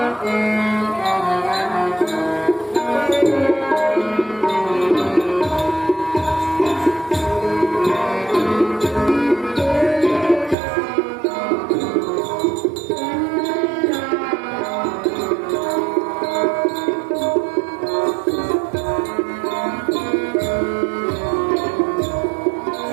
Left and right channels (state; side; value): drops out; left; at 10.6 s